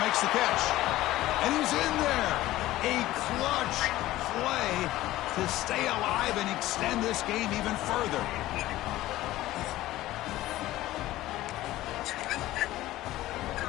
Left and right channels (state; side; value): quieter; right; 16.1 dB